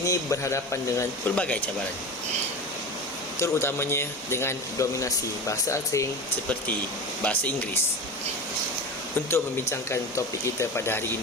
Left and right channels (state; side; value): normal; both; correlation 0.29